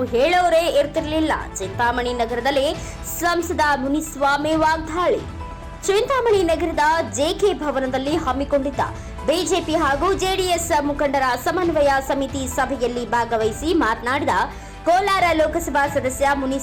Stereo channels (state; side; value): identical; both; correlation 1.00